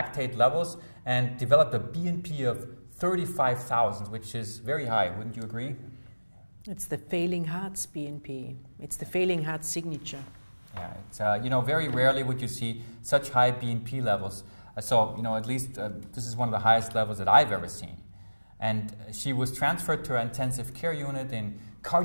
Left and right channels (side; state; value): both; inverted; correlation -1.00